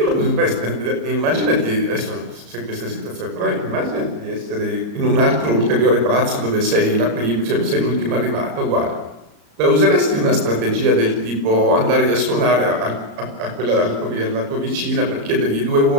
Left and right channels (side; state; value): left; late; 34 ms